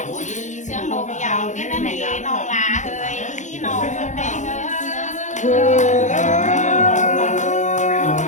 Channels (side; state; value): right; late; 0.35 ms